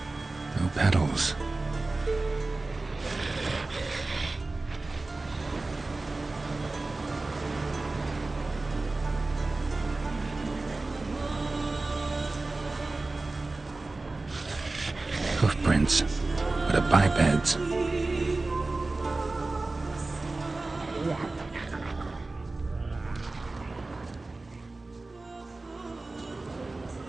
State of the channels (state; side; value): quieter; left; 3.3 dB